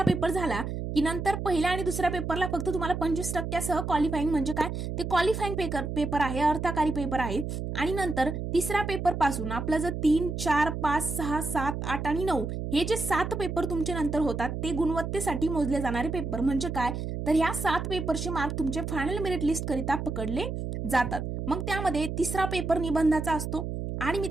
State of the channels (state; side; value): noise; right; hum, 4 dB below the sound